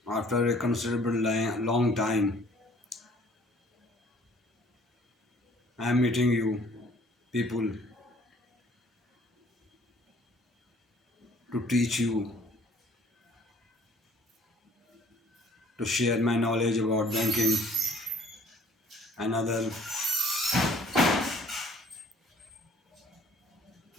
After a considerable long time, I am meeting you people to teach you, to share my knowledge about banking and other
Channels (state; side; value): normal; both; correlation 0.56